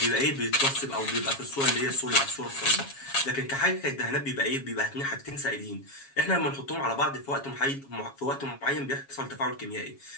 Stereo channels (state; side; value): late; right; 7.3 ms